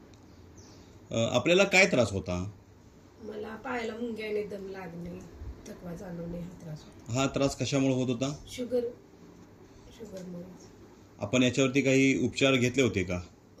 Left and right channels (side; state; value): both; identical; correlation 1.00